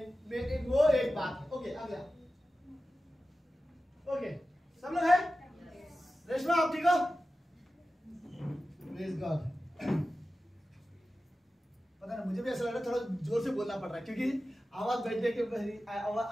वो एक बात है। ओके, आ गया। ओके, सब लोग है? रेशमा आप ठीक हो? Praise God. पता नहीं, मुझे भी ऐसा लग रहा है थोड़ा जोर से बोलना पड़ रहा है क्योंकि आवाज बैठने के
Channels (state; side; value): normal; both; correlation 0.94